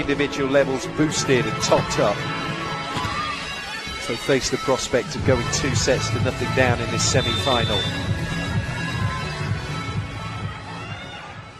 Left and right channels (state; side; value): identical; both; correlation 1.00